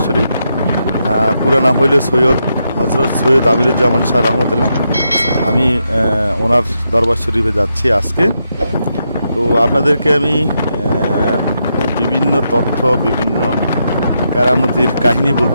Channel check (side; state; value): both; inverted; correlation -0.83